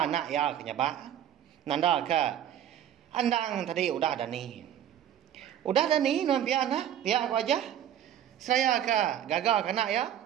anak ya kenyaba nanda ke andang tadi udah dani nampi anak pihak aku aja saya ke gagal anak ya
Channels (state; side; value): quieter; left; 10.5 dB